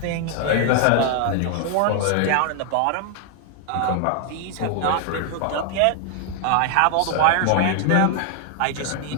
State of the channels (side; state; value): both; different; correlation 0.00